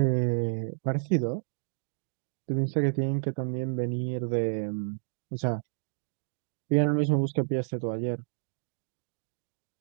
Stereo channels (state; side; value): silent; left; digital silence